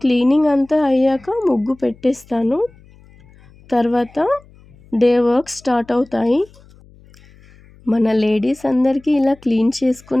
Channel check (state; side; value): noise; left; hum, 26 dB below the sound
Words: క్లీనింగ్ అంతా అయ్యాక ముగ్గు పెట్టేస్తాను. తర్వాత డే వర్క్ స్టార్ట్ అవుతాయి. మన లేడీస్ అందరికీ ఇలా క్లీన్